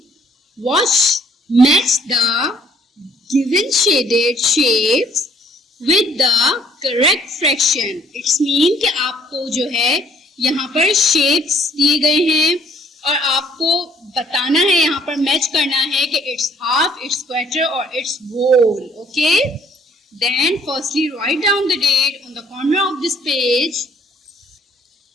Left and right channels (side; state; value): both; normal; correlation 0.61